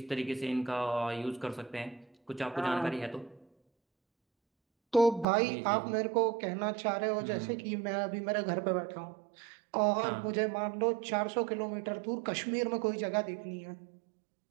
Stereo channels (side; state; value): left; drops out; at 5.2 s